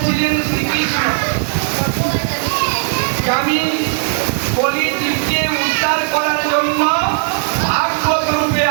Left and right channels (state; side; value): silent; left; 58 dB below the other